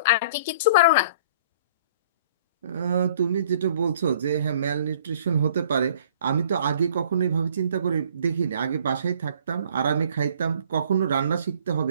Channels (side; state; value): both; inverted; correlation -0.55